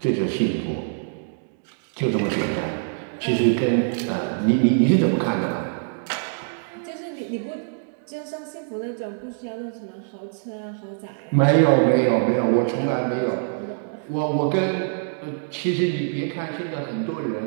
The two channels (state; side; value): silent; left; digital silence